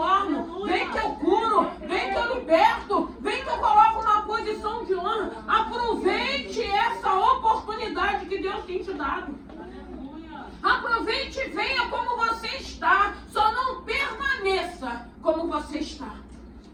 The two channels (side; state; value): both; identical; correlation 1.00